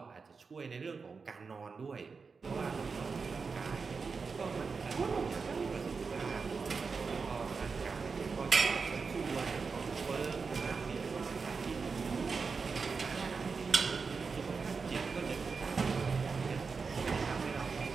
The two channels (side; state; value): left; quieter; 4.9 dB